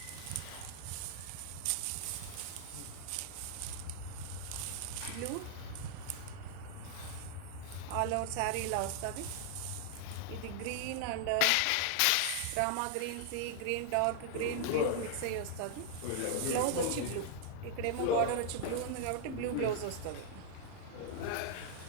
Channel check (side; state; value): both; different; correlation -0.01